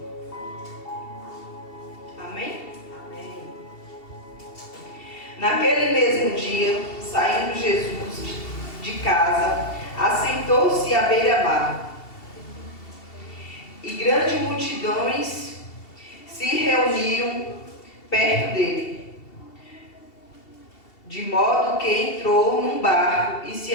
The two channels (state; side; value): late; right; 2.7 ms